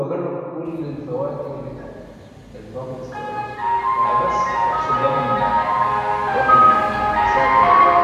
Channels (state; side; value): identical; both; correlation 1.00